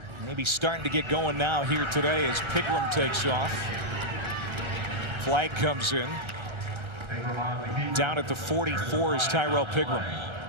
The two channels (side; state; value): left; late; 1.3 ms